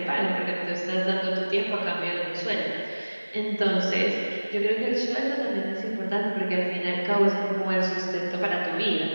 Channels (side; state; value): both; inverted; correlation -1.00